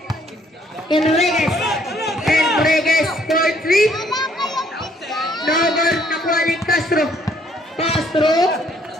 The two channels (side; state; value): both; normal; correlation 0.65